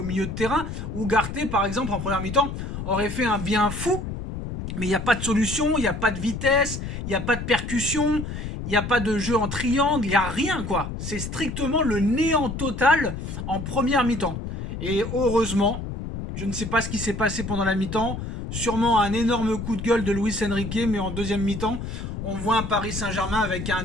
milieu de terrain. Ugarte, par exemple, en première mi-temps, aurait fait un bien fou, mais il n'y a pas de solution, il n'y a pas de vitesse, il n'y a pas de percussion, il n'y a pas de jeu en triangle, il n'y a rien quoi. C'est strictement le néant total en première mi-temps. Et heureusement, je ne sais pas ce qui s'est passé pendant la mi-temps, sûrement un énorme coup de gueule de Luis Enrique, mais en deuxième mi-temps, on voit un Paris Saint-Germain avec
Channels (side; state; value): left; noise; rumble, 6 dB below the sound